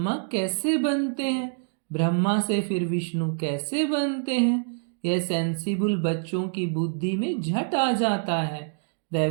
कैसे बनते हैं, ब्रह्मा से फिर विष्णु कैसे बनते हैं, यह सेंसिबल बच्चों की बुद्धि में झट आ जाता है।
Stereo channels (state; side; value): silent; left; digital silence